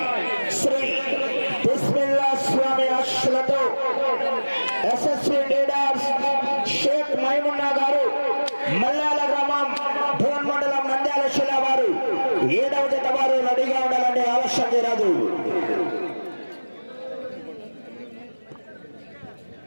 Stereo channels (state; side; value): inverted; both; correlation -1.00